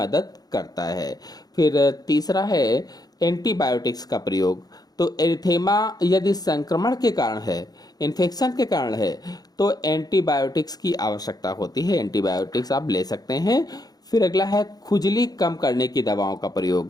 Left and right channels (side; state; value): right; late; 0.19 ms